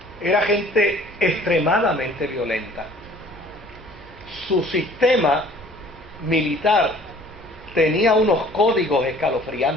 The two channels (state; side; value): normal; both; correlation 0.52